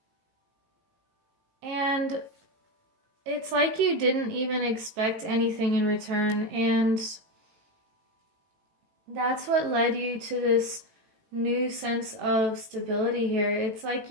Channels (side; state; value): left; late; 18 ms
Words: And it's like you didn't even expect anything in return, and that's what led you to this new sense of stability here. It's like